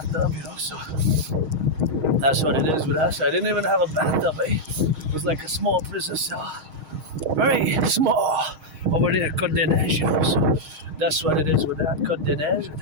so that's what it is with us. I didn't even have a bathtub, It was like a small prison cell. Very small over there, Côte des Neiges, so that's what it is with that, Côte des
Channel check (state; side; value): late; left; 6.4 ms